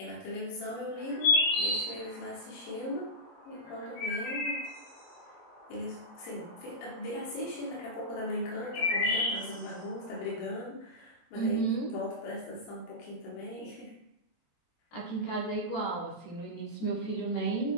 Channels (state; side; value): late; right; 23 ms